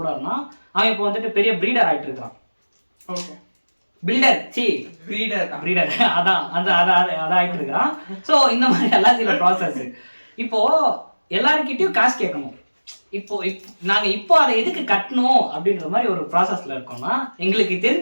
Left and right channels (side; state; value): both; inverted; correlation -1.00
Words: இருந்தான். அவன் இப்போ வந்துட்டு பெரிய ப்ரீடர் ஆகிட்டு இருக்கான். ஓகே, ப்ரீடர் அதான் ஆகிட்டு இருக்கிறான். ஸோ இந்த மாதிரி எல்லாம் சில ப்ராசஸ். இப்போ எல்லாருக்கிட்டையும் காசு கேட்கணும். இப்போ நாங்க இப்போ அதை எதுக்கு கட்டணும் அப்படின்ற மாதிரி ஒரு ப்ராசஸ்ல இருக்கோம்னா, எங்களுக்கு